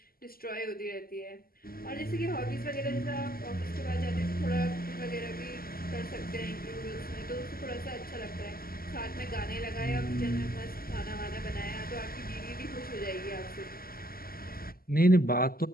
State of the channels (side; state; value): right; late; 0.43 ms